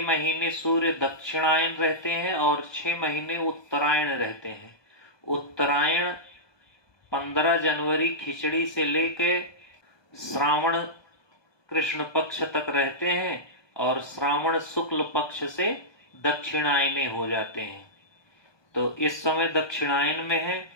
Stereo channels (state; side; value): late; right; 1.2 ms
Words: महीने सूर्य दक्षिणायन रहते हैं और 6 महीने उत्तरायण रहते हैं। उत्तरायण 15 जनवरी खिचड़ी से लेके श्रावण कृष्ण पक्ष तक रहते हैं और श्रावण शुक्ल पक्ष से दक्षिणायने हो जाते हैं। तो इस समय दक्षिणायन में